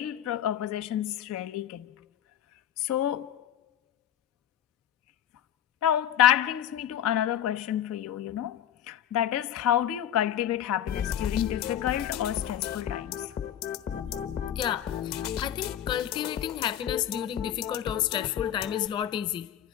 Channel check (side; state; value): right; quieter; 10.7 dB